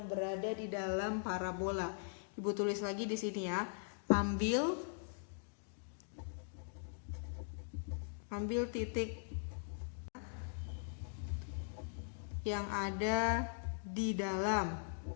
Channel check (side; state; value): right; silent; digital silence